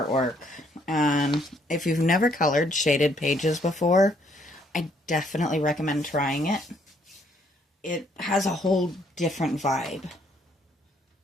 And if you've never colored shaded pages before, I definitely recommend trying it. It has a whole different vibe.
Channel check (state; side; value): normal; both; correlation 0.68